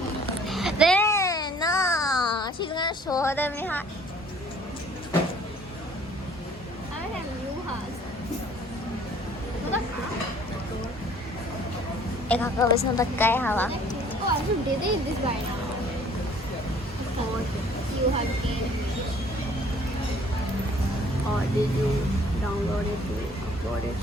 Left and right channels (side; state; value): both; normal; correlation 0.55